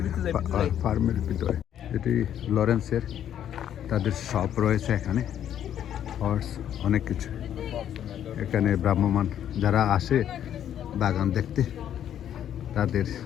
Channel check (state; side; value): quieter; right; 10.2 dB